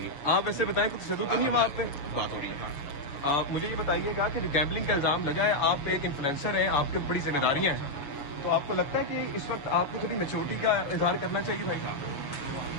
आप ऐसे बताएं कोई तशद्दुद तो नहीं है वहाँ पे? बात हो रही है। मुझे ये बताइएगा कि जो गैम्बलिंग का इल्जाम लगा है, आप एक इन्फ्लुएंसर हैं, आपके बड़ी जिम्मेदारियां हैं, तो आपको लगता है कि इस वक्त आपको थोड़ी मेच्योरिटी का इजहार करना चाहिए भाई?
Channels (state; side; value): late; right; 6.9 ms